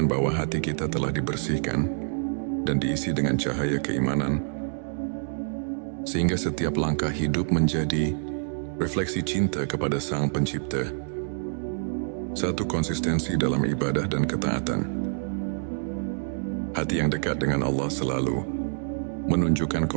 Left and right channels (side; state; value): left; silent; digital silence